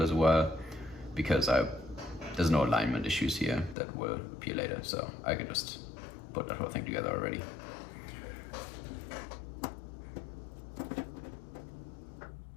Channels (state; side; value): drops out; right; at 3.8 s